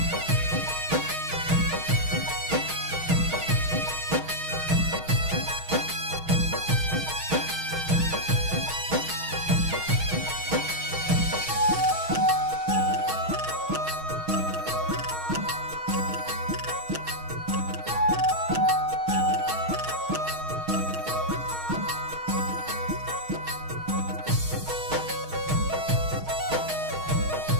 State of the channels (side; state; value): left; late; 6.3 ms